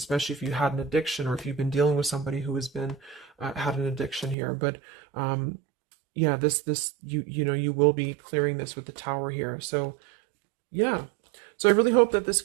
if you had an addiction, or if you've been dealing with somebody who has been had an addiction here. But yeah, this you will be clearing this with the Tower here. So yeah. So I really hope that this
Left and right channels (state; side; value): drops out; left; at 4.4 s